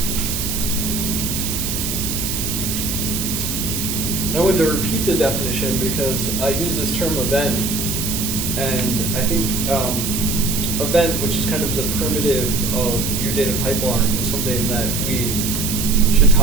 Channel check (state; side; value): noise; right; hiss, 2 dB below the sound